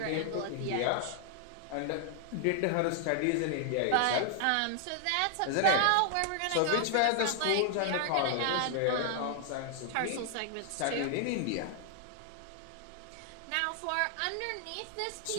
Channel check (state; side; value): different; both; correlation 0.00